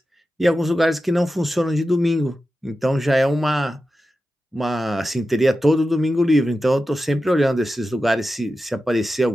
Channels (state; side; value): normal; both; correlation 0.92